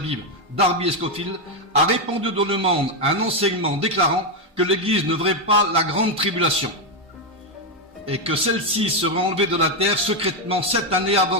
Darby et Scofield, a répandu dans le monde un enseignement déclarant que l'Église ne verrait pas la grande tribulation et que celle-ci serait enlevée de la terre secrètement 7 années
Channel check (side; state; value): both; normal; correlation 0.04